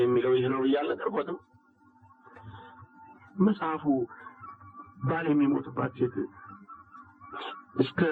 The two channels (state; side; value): identical; both; correlation 1.00